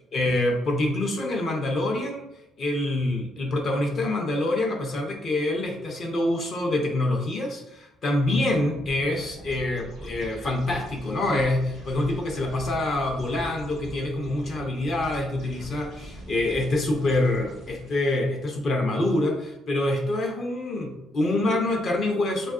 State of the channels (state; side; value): normal; both; correlation 0.77